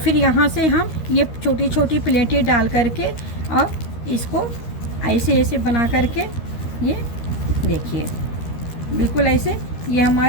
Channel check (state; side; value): late; right; 13 ms